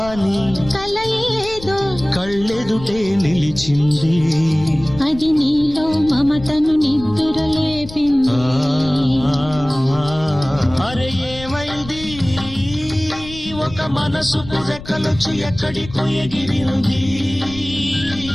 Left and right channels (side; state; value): left; noise; rumble, 14 dB below the sound